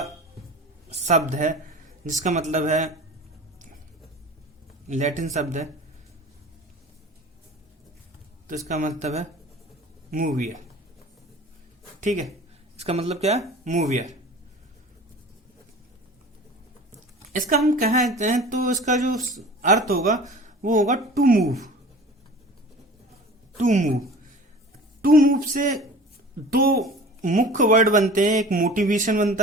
शब्द है जिसका मतलब है, लैटिन शब्द है तो इसका मतलब है मूवियर। ठीक है, इसका मतलब क्या है? मूवियर। इसका हम कहते हैं तो इसका जो अर्थ होगा वो होगा to move. To move to move से दो मुख्य वर्ड बनते हैं। एक मोटिवेशन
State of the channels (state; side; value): normal; both; correlation 0.40